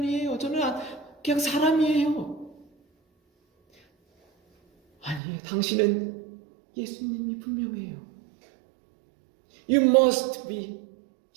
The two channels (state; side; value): drops out; left; at 5.2 s